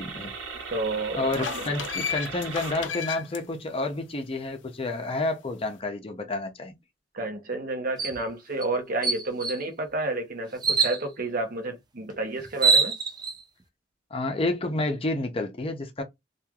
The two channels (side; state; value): both; normal; correlation 0.22